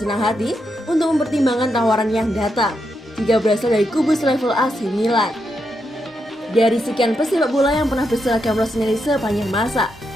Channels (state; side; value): normal; both; correlation 0.83